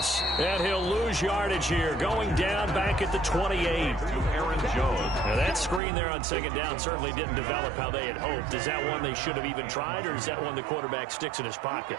And he'll lose yardage here. Going down back at the 28. Aaron Jones. Now that screen there on second down certainly didn't develop how they had hoped. Is that one they should have even tried, or is that one the quarterback sticks in his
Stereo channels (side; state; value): left; drops out; at 5.8 s